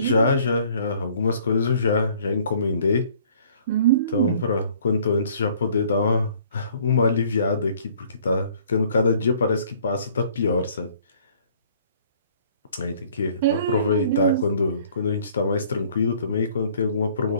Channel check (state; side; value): inverted; both; correlation -0.57